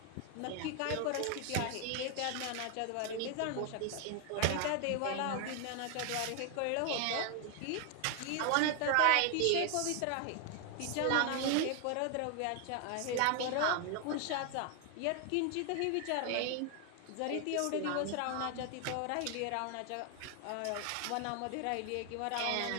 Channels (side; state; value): both; different; correlation 0.00